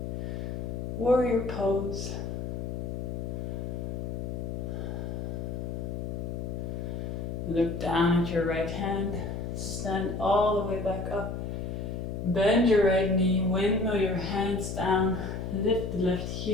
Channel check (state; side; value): noise; left; hum, 4 dB below the sound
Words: warrior pose. Look down at your right hand, stand all the way back up, bend your right knee, windmill your hands down, lift the left